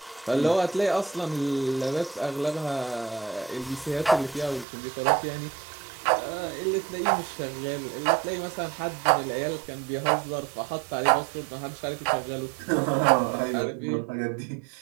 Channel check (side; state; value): left; drops out; at 4.7 s